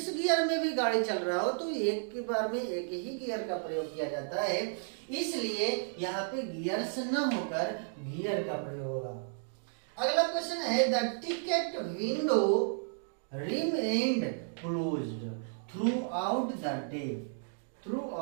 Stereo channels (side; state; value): left; silent; digital silence